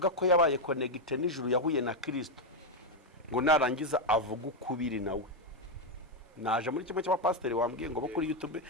ko yabaye connected n'ijuru yahuye na Kristo ngo narangiza avuga ukubiri nawe. Naje muri kimwe cy'abapasiteri wambwiye ngo bo kuri YouTube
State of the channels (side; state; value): both; normal; correlation 0.04